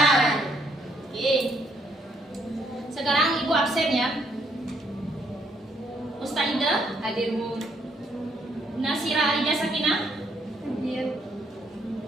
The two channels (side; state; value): both; normal; correlation 0.71